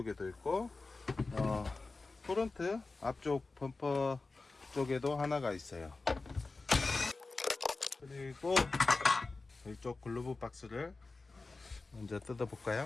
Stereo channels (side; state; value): right; quieter; 3.7 dB